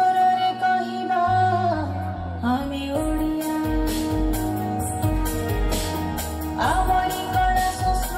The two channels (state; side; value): identical; both; correlation 1.00